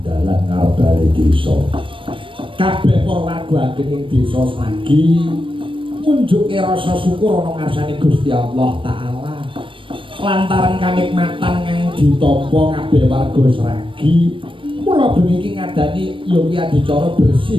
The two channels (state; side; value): late; left; 0.25 ms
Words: dalan ngarep desa. Kabeh Purwarga Ageng Desa Seragi munjuke rasa syukur ana ngarsane Gusti Allah Ta'ala lantaran kanikmatan kang ditampa kabeh warga Seragi. Mula bengi iki ngadani ya kuwi adicara